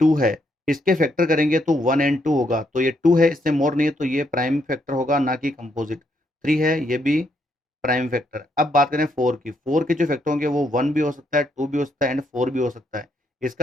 है, इसके फैक्टर करेंगे तो 1 एंड 2 होगा, तो ये 2 है, इससे मोर नहीं है, तो ये प्राइम फैक्टर होगा, ना कि कंपोजिट। 3 है, ये भी प्राइम फैक्टर। अब बात करें 4 की, 4 के जो फैक्टर होंगे वो 1 भी हो सकता है, 2 भी हो सकता है एंड 4 भी हो सकता है।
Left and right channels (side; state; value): both; normal; correlation 0.75